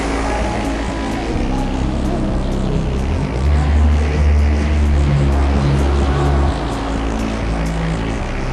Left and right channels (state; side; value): identical; both; correlation 1.00